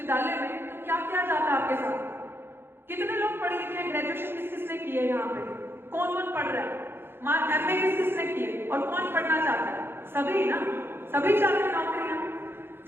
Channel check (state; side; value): late; left; 0.11 ms